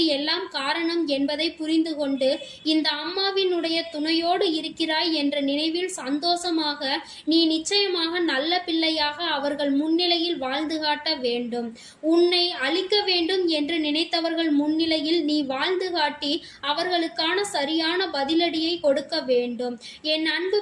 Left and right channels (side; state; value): both; identical; correlation 1.00